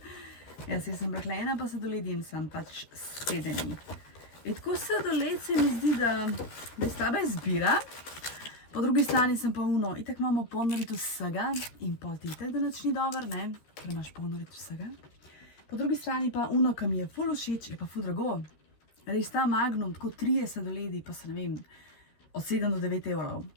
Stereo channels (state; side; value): late; right; 13 ms